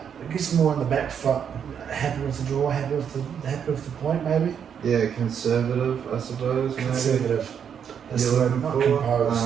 guess more on the back foot, happy with the draw, happy with the point, maybe. Yeah, conservative, I suppose. Conservative. Maybe. That's the word, not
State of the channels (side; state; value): left; quieter; 7.9 dB